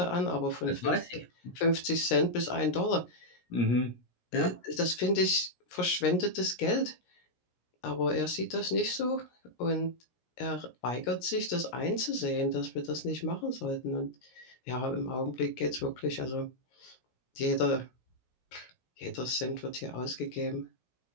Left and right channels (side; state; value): right; late; 17 ms